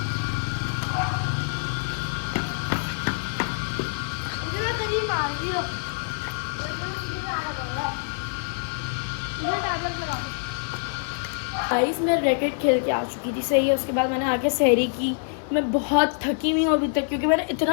गाइस मैं रैकेट खेल के आ चुकी थी। सही है। उसके बाद मैंने आके सहरी की। मैं बहुत थकी हुई हूँ अभी तक, क्योंकि मैंने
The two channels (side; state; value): right; silent; digital silence